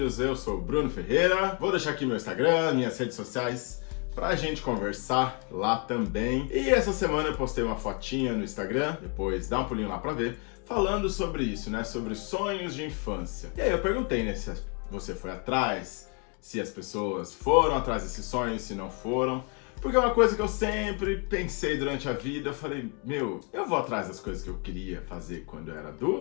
eu sou o Bruno Ferreira, vou deixar aqui meu Instagram, minhas redes sociais, pra gente conversar lá também. E essa semana eu postei uma fotinha no Instagram, depois dá um pulinho lá pra ver, falando sobre isso, né, sobre sonhos de infância. E aí eu perguntei, né, se você foi atrás, se as pessoas foram atrás desses sonhos, se não foram. Porque é uma coisa que eu sempre pensei durante a vida, eu falei, eu vou atrás das coisas que eu queria fazer quando eu era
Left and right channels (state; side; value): quieter; right; 34.9 dB